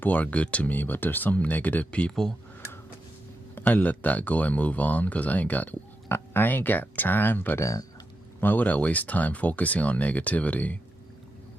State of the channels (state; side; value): normal; both; correlation 0.86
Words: are good to me, but there's some negative people. I let that go and move on because I ain't got time for that. Why would I waste time focusing on negativity?